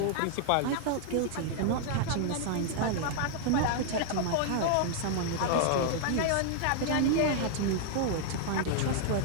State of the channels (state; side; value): different; both; correlation -0.01